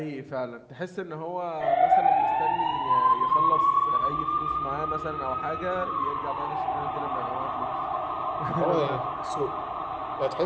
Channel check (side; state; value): both; identical; correlation 1.00